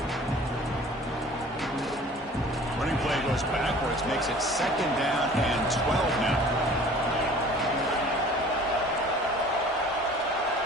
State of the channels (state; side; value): normal; both; correlation 0.47